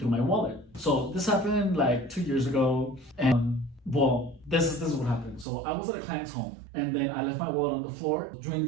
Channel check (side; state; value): left; drops out; at 5.5 s